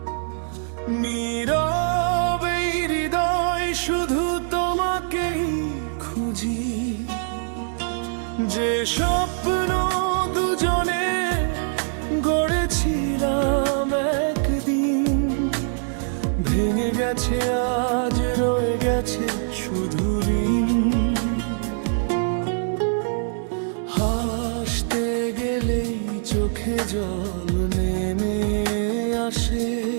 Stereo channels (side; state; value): left; silent; digital silence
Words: নীরবে হৃদয় শুধু তোমাকেই খুঁজি। যে স্বপ্ন দুজনে গড়েছিলাম একদিন, ভেঙে গেছে আজ, রয়ে গেছে শুধু ঋণ। হাসতে গেলেই চোখে জল নেমে আসে,